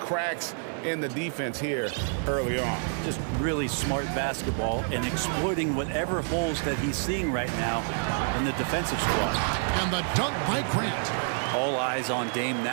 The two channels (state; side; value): silent; left; 59 dB below the other